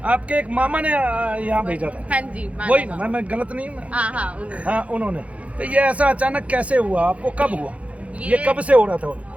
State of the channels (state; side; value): late; left; 0.065 ms